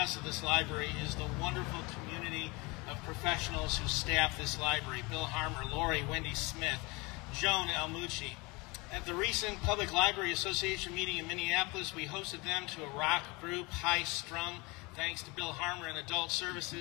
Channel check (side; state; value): right; quieter; 26.0 dB